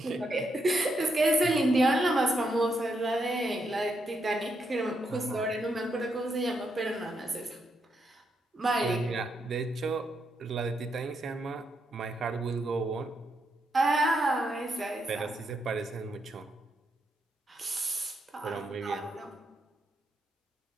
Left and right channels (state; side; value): normal; both; correlation 0.80